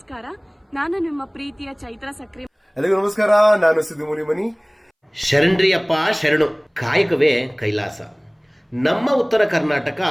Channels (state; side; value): identical; both; correlation 1.00